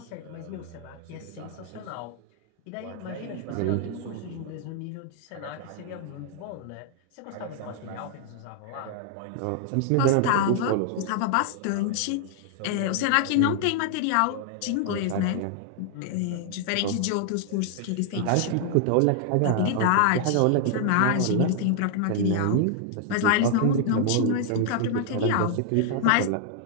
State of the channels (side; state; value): both; different; correlation 0.00